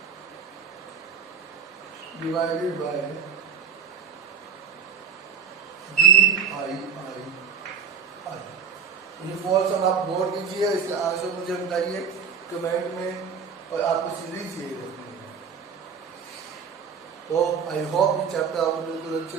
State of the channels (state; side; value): quieter; left; 6.7 dB